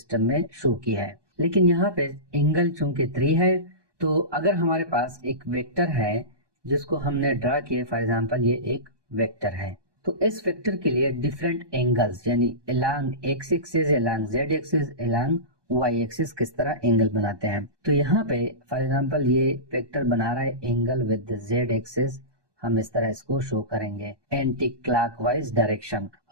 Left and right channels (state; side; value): late; left; 1.2 ms